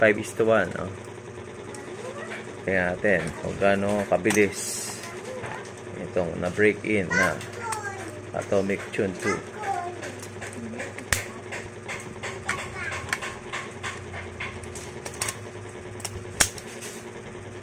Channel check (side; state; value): both; identical; correlation 1.00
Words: Tingnan natin kung gaano kabilis itong na break in na Atomic Tune 2.